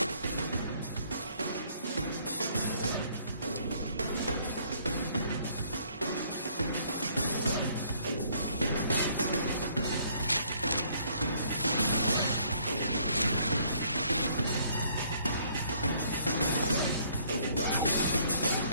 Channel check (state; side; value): inverted; both; correlation -0.63